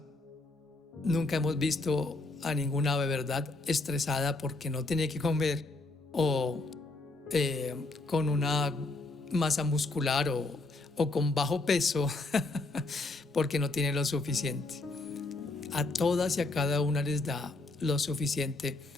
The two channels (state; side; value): quieter; right; 3.1 dB